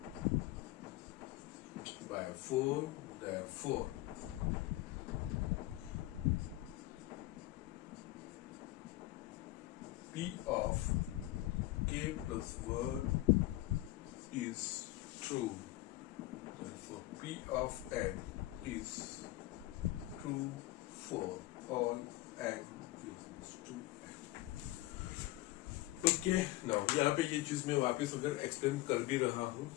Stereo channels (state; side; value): quieter; right; 17.4 dB